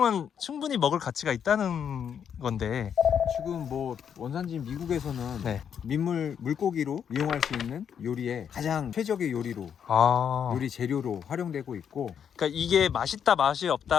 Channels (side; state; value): right; quieter; 8.0 dB